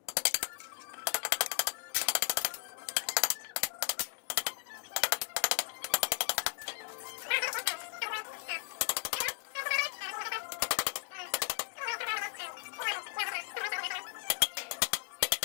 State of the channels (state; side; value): silent; right; digital silence